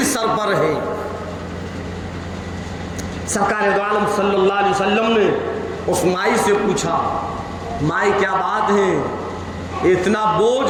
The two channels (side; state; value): both; identical; correlation 1.00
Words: سر پر ہے۔ سرکار دو عالم صلی اللہ علیہ وسلم نے اس مائی سے پوچھا، مائی کیا بات ہے، اتنا